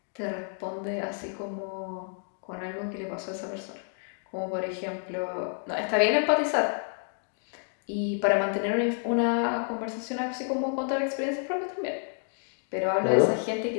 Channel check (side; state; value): right; silent; 58 dB below the other